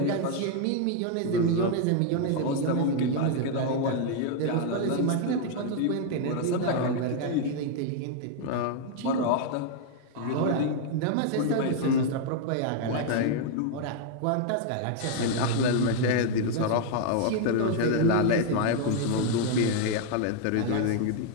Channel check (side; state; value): both; different; correlation 0.00